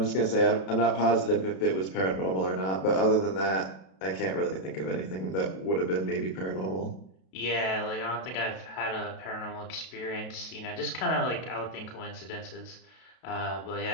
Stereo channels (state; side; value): late; right; 32 ms